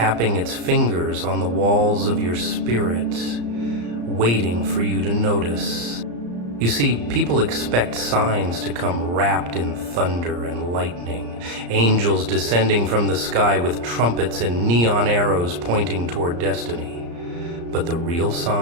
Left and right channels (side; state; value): left; late; 34 ms